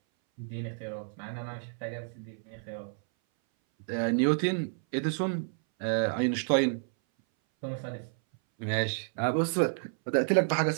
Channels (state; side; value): silent; left; 58 dB below the other